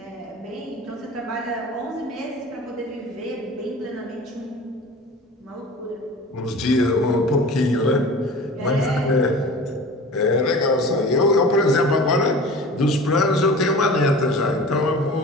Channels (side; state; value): both; normal; correlation 0.39